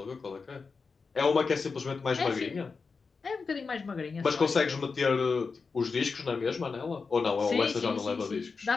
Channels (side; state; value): right; quieter; 4.8 dB